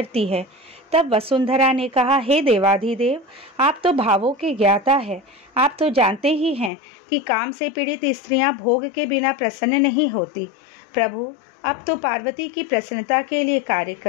है। तब वसुंधरा ने कहा, हे देवाधिदेव, आप तो भावों के ज्ञाता है। आप तो जानते ही हैं कि काम से पीड़ित स्त्रियां भोग के बिना प्रसन्न नहीं होती। प्रभु, अब तो पार्वती की प्रसन्नता के लिए कार्य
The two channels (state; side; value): drops out; right; at 6.7 s